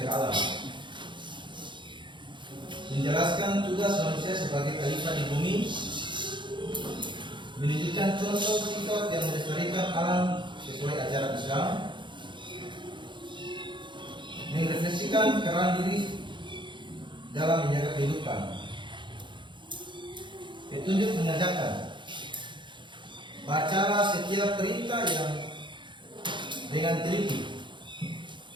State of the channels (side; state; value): left; late; 0.23 ms